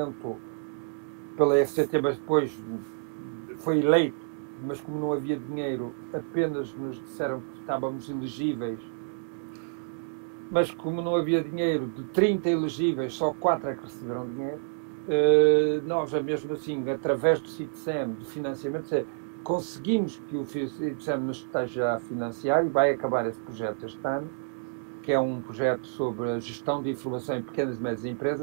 pela FCT, mas depois foi eleito, mas como não havia dinheiro, apenas nos disseram que estávamos elegíveis. Mas como não havia dinheiro, de 30 elegíveis, só 4 é que receberam dinheiro. Nós, mesmo assim, através do CITSEM, de financiamento, conseguimos que o FICSEM nos esteja a financiar, e vai acabar esse projeto este ano, que é um projeto sobre a gestão de informação em pequenas e médias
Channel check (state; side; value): silent; left; digital silence